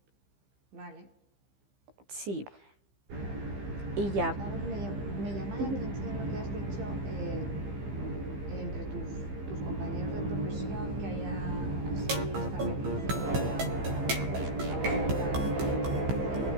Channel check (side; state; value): left; late; 15 ms